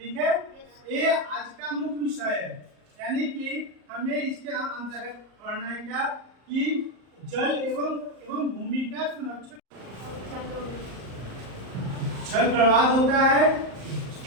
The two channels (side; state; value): left; late; 38 ms